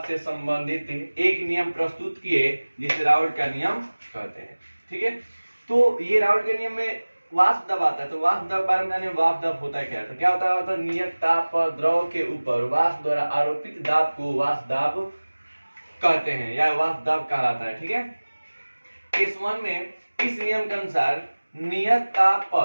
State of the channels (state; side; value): inverted; both; correlation -1.00